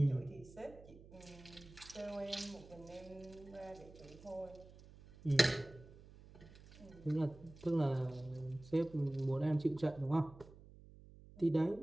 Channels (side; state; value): right; noise; hum, 20 dB below the sound